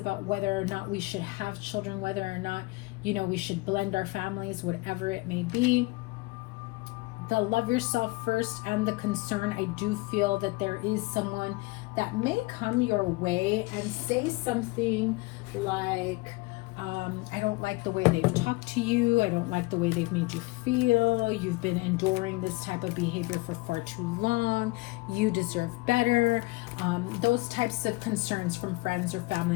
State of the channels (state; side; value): quieter; right; 23.3 dB